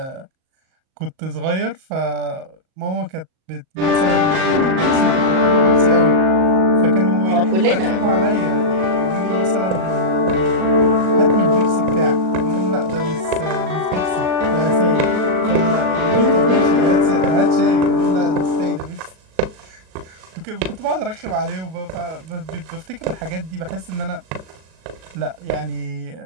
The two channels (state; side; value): late; left; 38 ms